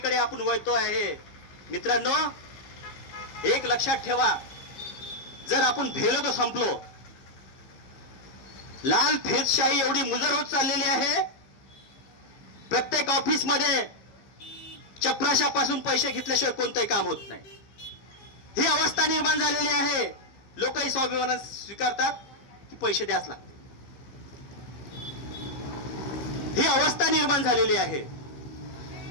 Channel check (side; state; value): right; late; 15 ms